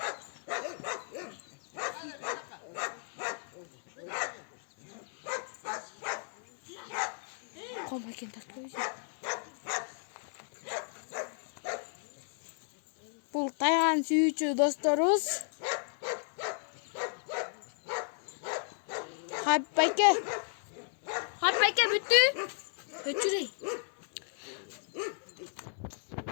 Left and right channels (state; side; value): silent; right; digital silence